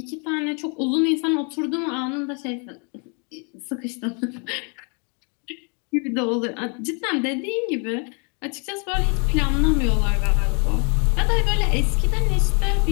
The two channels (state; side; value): quieter; right; 36.4 dB